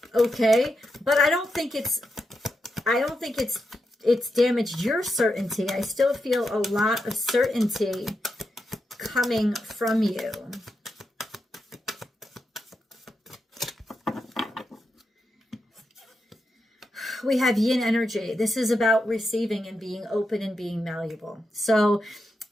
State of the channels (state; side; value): normal; both; correlation 0.86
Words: Okay. But I don't think it's damaged your certainty. I still feel a lot of certainty coming from you. We have yin energy. This is about receiving and being open and being malleable. So,